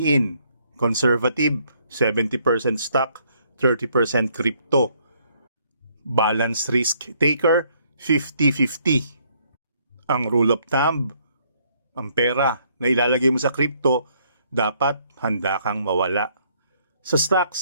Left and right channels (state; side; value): inverted; both; correlation -0.68